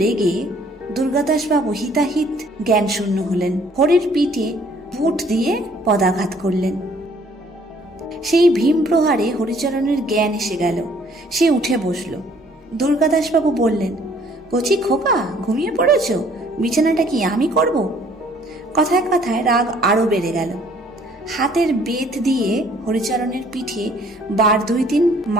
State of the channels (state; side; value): normal; both; correlation 0.60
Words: রেগে দুর্গাদাসবাবু হিতাহিত জ্ঞান শূন্য হলেন। হরির পিঠে বুট দিয়ে পদাঘাত করলেন। সেই ভীম প্রহারে হরিচরণের জ্ঞান এসে গেল। সে উঠে বসল। দুর্গাদাসবাবু বললেন, কচি খোকা, ঘুমিয়ে পড়েছ? বিছানাটা কি আমি করব? কথায় কথায় রাগ আরো বেড়ে গেল। হাতের বেত দিয়ে হরিচরণের পিঠে 2-3